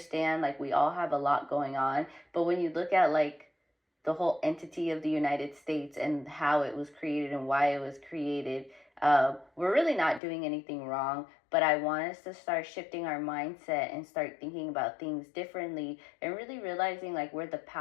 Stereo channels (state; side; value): drops out; right; at 10.2 s